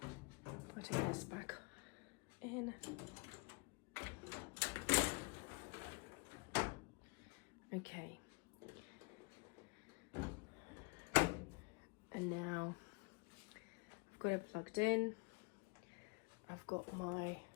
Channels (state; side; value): quieter; right; 30.3 dB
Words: Putting this back in. Okay, and now I've got it plugged in. I've got my